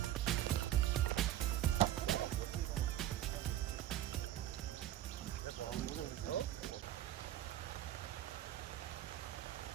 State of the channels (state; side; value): quieter; left; 12.7 dB